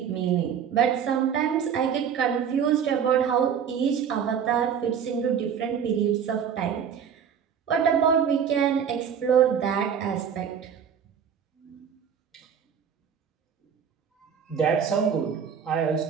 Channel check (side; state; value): left; quieter; 7.8 dB